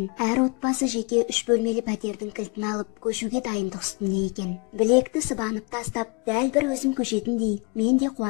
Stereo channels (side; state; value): right; quieter; 30.7 dB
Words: әр отбасы жеке 3 бөлмелі пәтердің кілтін алып, көшуге дайындық үстінде екен. Білекті сыбанып тастап, дәл бір өзім көшетіндей, мен де